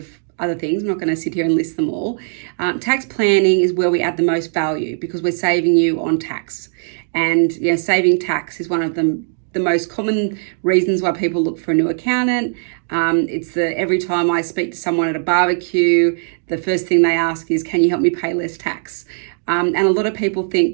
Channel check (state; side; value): silent; left; digital silence